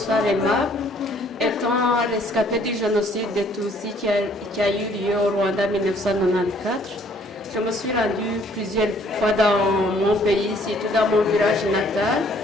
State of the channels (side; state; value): both; normal; correlation 0.61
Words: Emma. Étant rescapée du génocide des Tutsis qui a eu lieu au Rwanda en 1994, je me suis rendue plusieurs fois dans mon pays, surtout dans mon village natal,